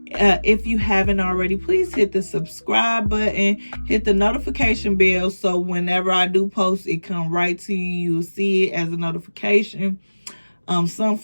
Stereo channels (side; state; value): both; inverted; correlation -1.00